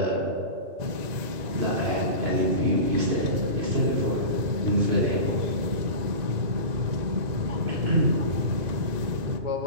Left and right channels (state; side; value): late; left; 2.0 ms